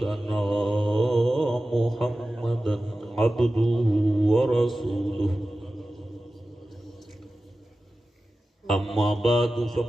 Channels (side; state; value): both; normal; correlation 0.95